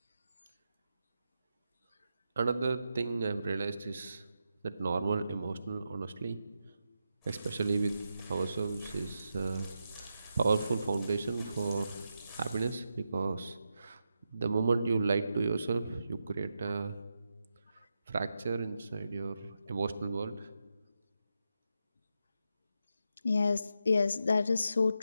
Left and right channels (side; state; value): both; inverted; correlation -0.86